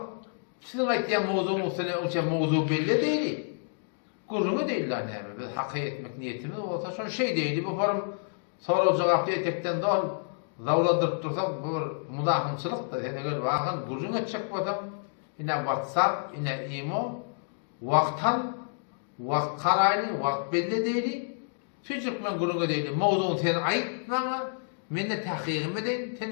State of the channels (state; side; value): silent; right; digital silence